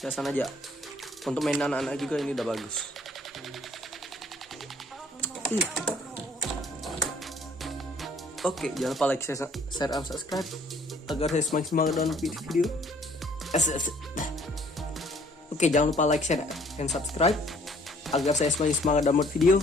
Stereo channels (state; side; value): normal; both; correlation 0.58